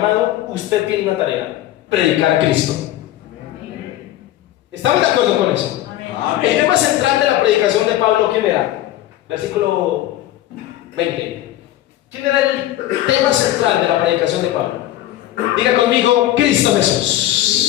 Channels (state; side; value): quieter; right; 13.9 dB